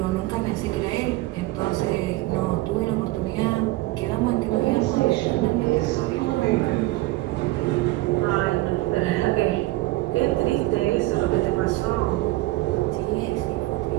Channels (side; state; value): left; quieter; 19.1 dB